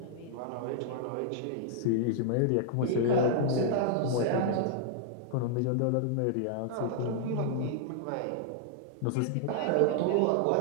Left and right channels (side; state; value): both; different; correlation -0.01